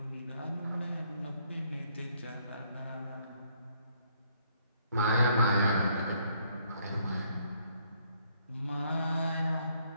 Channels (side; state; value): both; inverted; correlation -0.69